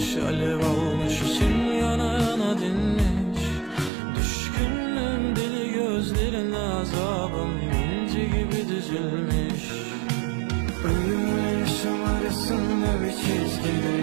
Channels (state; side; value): drops out; left; at 3.9 s